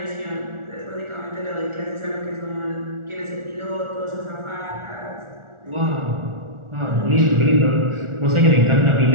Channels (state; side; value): late; left; 1.4 ms